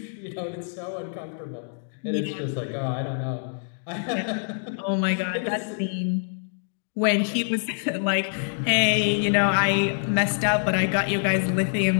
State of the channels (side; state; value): right; silent; digital silence